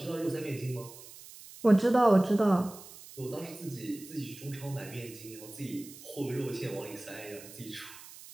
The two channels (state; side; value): noise; right; hiss, 17 dB below the sound